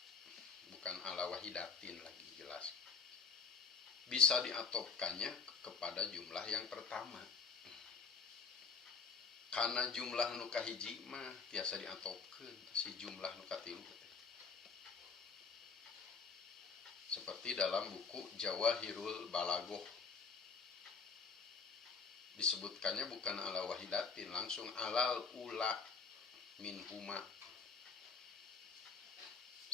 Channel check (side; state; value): right; quieter; 5.0 dB